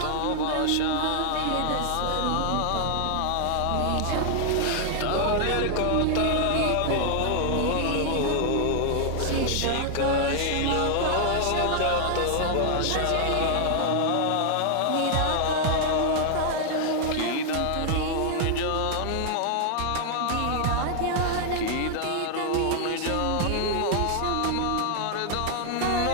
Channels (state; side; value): different; both; correlation 0.00